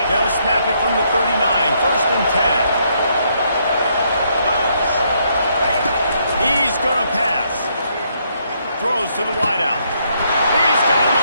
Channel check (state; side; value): inverted; both; correlation -0.73